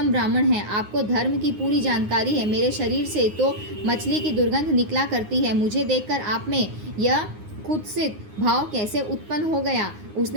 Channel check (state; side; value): late; left; 9.6 ms